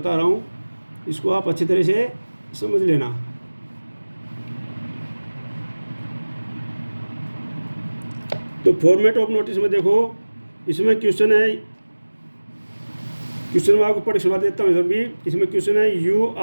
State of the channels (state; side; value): inverted; both; correlation -1.00